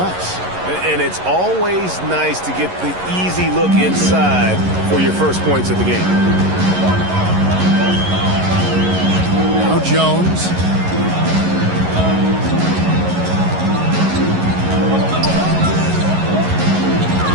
And it's always nice to get the easy look inside for your first points of the game. Now Jones.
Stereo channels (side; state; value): left; late; 11 ms